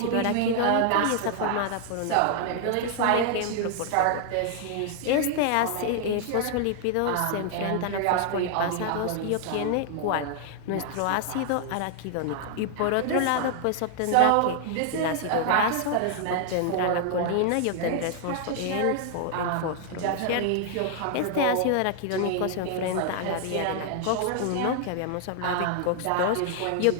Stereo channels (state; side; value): different; both; correlation 0.00